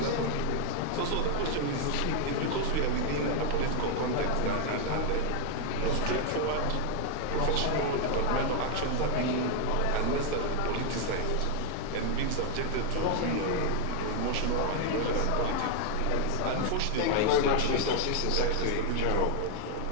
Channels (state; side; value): different; both; correlation 0.00